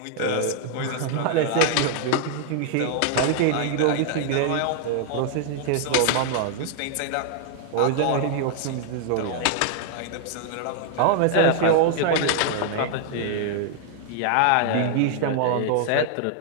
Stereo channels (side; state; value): both; different; correlation 0.00